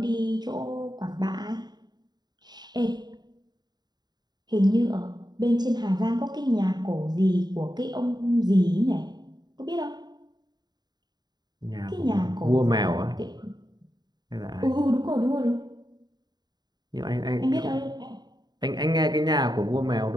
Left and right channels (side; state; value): left; late; 0.20 ms